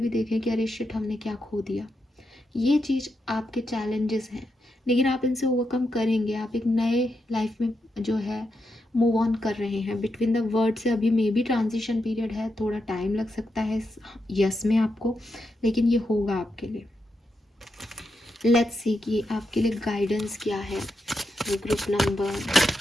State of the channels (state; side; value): normal; both; correlation 0.85